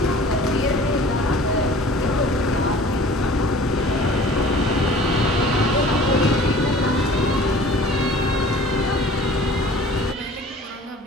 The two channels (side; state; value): both; normal; correlation 0.47